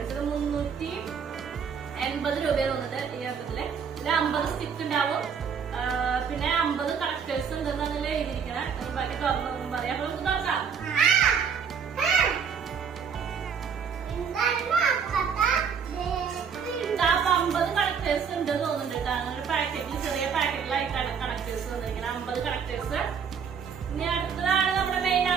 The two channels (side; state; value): left; quieter; 6.7 dB